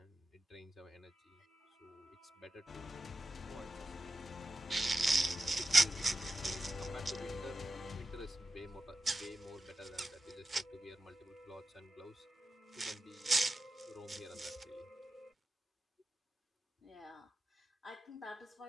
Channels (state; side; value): normal; both; correlation 0.93